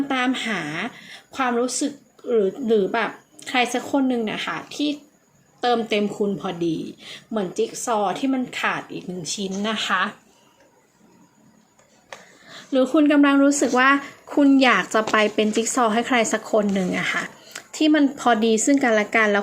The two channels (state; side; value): identical; both; correlation 1.00